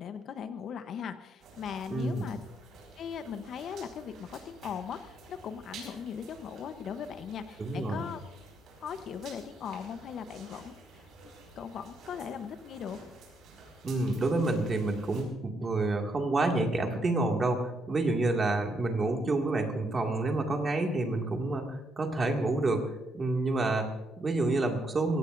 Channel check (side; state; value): both; normal; correlation 0.76